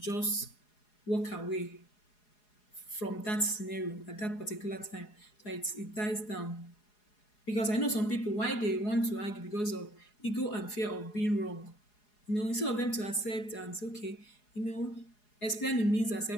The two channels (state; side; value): late; right; 4.8 ms